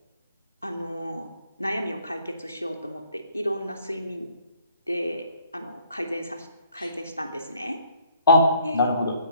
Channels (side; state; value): both; inverted; correlation -0.63